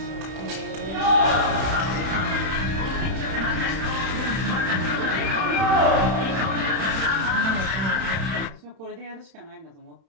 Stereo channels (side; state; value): left; late; 31 ms